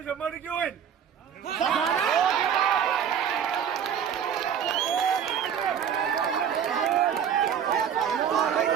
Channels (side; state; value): left; quieter; 8.3 dB